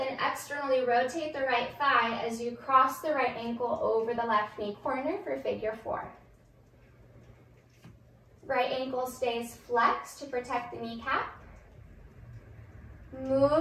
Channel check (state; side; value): identical; both; correlation 1.00